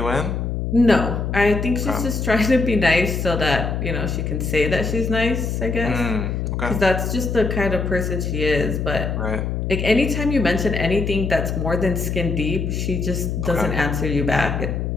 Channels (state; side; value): noise; left; hum, 2 dB below the sound